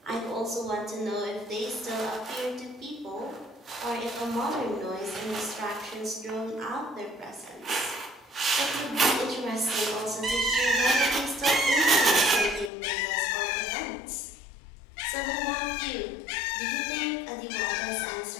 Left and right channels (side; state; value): right; drops out; at 12.7 s